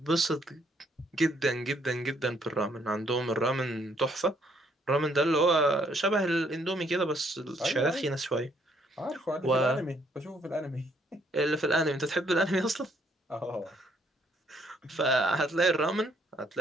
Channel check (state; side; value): normal; both; correlation 0.68